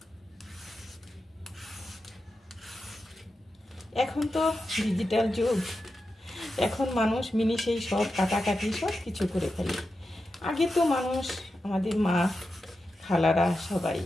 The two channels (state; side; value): normal; both; correlation 0.90